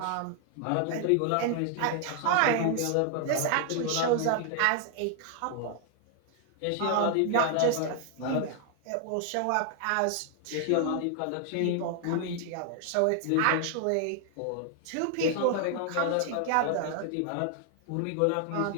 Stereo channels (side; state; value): both; different; correlation 0.00